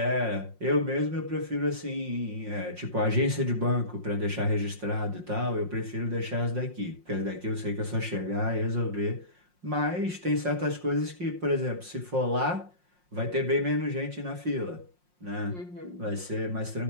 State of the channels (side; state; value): left; late; 5.6 ms